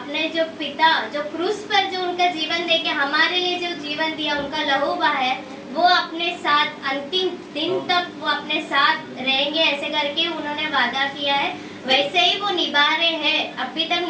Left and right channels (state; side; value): identical; both; correlation 1.00